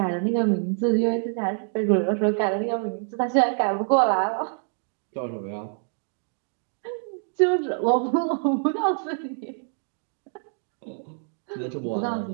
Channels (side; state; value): left; silent; 61 dB below the other